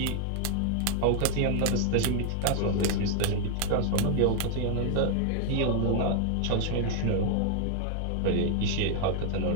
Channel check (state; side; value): different; both; correlation 0.00